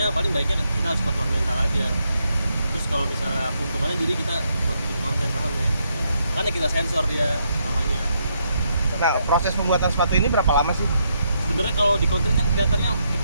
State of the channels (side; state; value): both; inverted; correlation -0.77